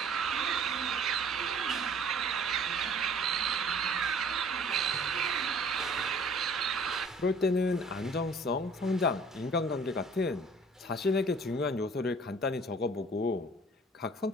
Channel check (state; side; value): normal; both; correlation 0.52